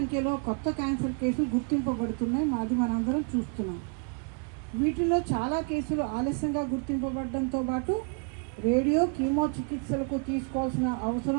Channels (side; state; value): left; quieter; 37.8 dB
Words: కొత్త క్యాన్సర్ కేసులు గుర్తింపబడుతున్నాయి. అది మనందరం చూస్తున్నాం. వీటిలో చాలా కేసులు ఆలస్యంగా గుర్తింపబడడంతో పాటు రేడియో కీమో చికిత్సలకు తీసుకోవాల్సిన